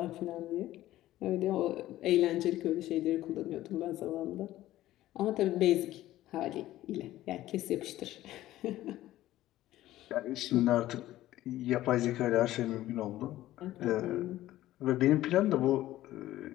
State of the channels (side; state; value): right; quieter; 14.9 dB